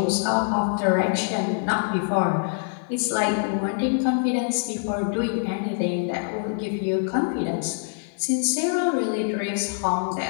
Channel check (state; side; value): silent; right; 56 dB below the other